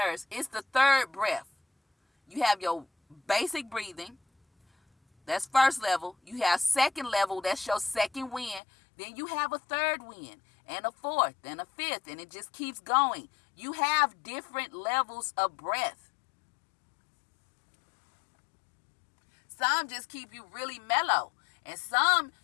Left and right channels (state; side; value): drops out; right; at 8.6 s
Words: It's the third breath. You have your basic breathing. That's first level. You have second level. That's your second wind. Then you have a third wind and a fourth and a fifth, and it just keeps going. You have different levels of breath. Some just keep you really mellow, and some